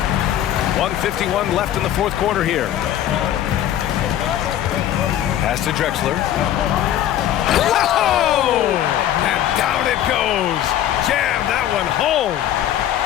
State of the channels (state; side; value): quieter; right; 11.7 dB